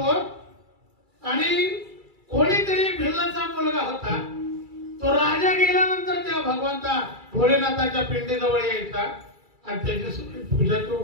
आणि कोणीतरी भिल्लाचा मुलगा होता, तो राजा गेल्यानंतर त्या भगवंता भोलेनाथाच्या पिंडीजवळ यायचा आणि त्याची पूजा तो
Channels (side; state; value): left; late; 2.3 ms